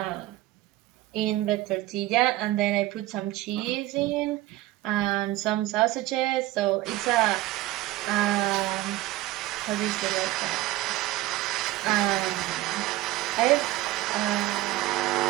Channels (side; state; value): left; quieter; 17.0 dB